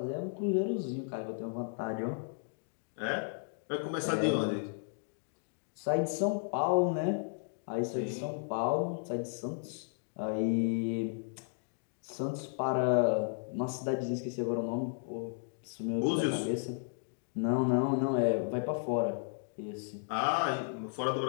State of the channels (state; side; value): silent; right; digital silence